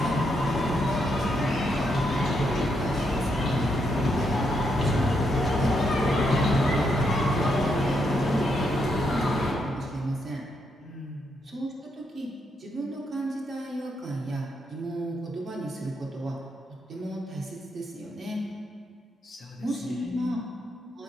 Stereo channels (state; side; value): normal; both; correlation 0.79